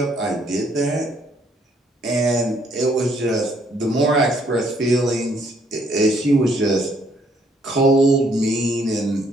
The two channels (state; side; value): normal; both; correlation 0.67